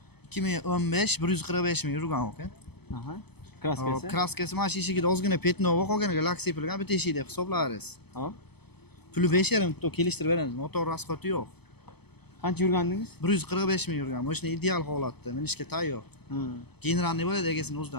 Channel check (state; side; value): late; right; 0.97 ms